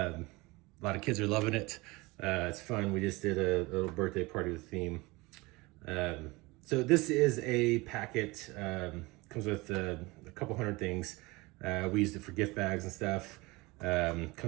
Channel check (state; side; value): quieter; left; 23.1 dB